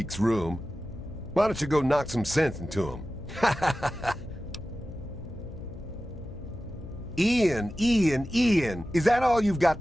room. Why don't you go knock some sense into him? Ian, is that all you've got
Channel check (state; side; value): noise; left; hum, 15 dB below the sound